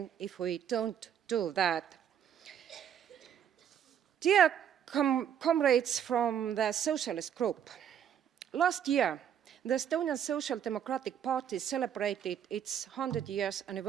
if we don't do that. Dear comrades from the Socialist Group, last year, the Estonian Social Democratic Party celebrated its 100 years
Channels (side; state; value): left; quieter; 9.1 dB